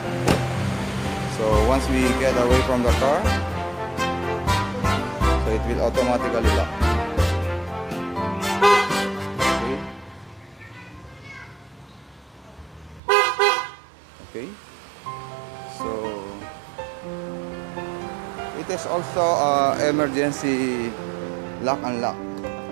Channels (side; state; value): left; drops out; at 13.0 s